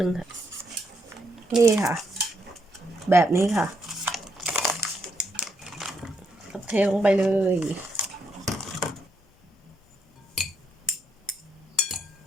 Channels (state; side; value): normal; both; correlation 0.77